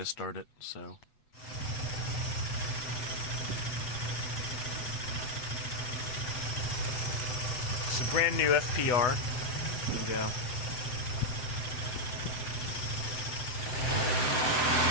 start it, so... It's a brand new FPR. There we go.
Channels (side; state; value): right; late; 8.0 ms